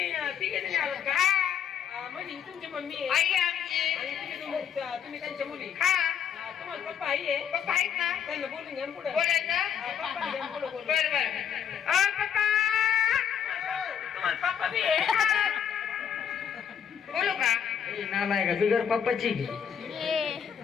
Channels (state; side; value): quieter; right; 8.2 dB